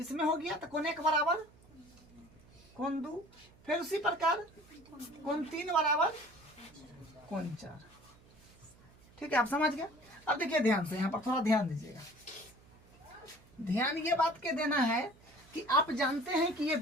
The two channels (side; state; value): right; noise; hum, 26 dB below the sound